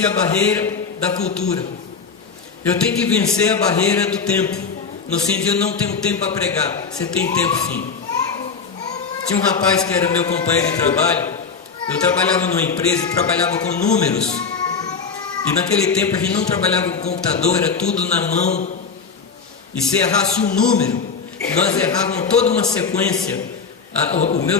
a barreira da cultura. Eu tenho que vencer a barreira do tempo. No sentido, eu não tenho tempo para pregar. Você tem tempo sim. Tinha um rapaz que era meu companheiro de trabalho. Eu trabalhava numa empresa e trabalhava com números. E naquele tempo a gente não trabalhava com computador, era tudo na mão. E se errasse um número, nós errávamos toda uma sequência. O meu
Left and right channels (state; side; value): quieter; right; 5.4 dB